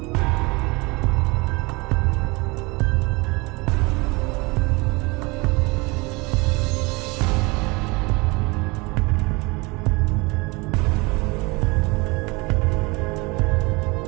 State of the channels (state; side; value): quieter; left; 25.7 dB